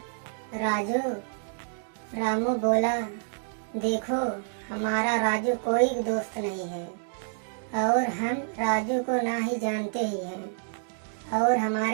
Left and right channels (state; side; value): silent; left; digital silence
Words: राजू। रामू बोला, देखो हमारा राजू कोई दोस्त नहीं है, और हम राजू को ना ही जानते ही हैं और